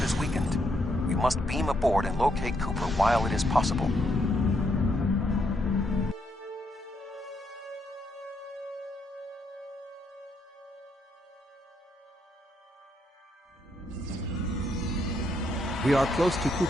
is weakened. We must beam aboard and locate Cooper while it is possible. We are close to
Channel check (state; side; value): normal; both; correlation 0.76